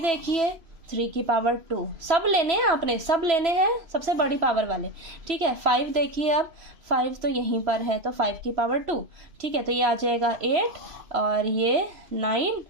देखिए 3 की पावर 2, सब लेने हैं आपने, सब लेने हैं सबसे बड़ी पावर वाले, ठीक है। 5 देखिए, अब 5 तो यहीं पर है तो 5 की पावर 2, ठीक है। तो ये आ जाएगा 8 और ये 9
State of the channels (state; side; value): late; left; 3.0 ms